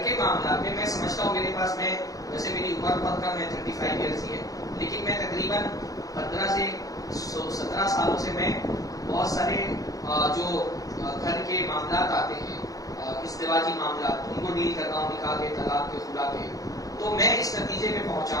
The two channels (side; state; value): right; late; 0.17 ms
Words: کے معاملات میں میں سمجھتا ہوں میرے پاس، میں ویسے میری عمر بہت کم ہے، 35 ایئرس ہی ہے، لیکن میں تقریباً 15 سے 17 سالوں سے میں بہت سارے جو گھر کے معاملات آتے ہیں، ازدواجی معاملات، ان کو ڈیل کرتا ہوں، نکاح کے، طلاق کے، خلا کے. تو میں اس نتیجے میں پہنچا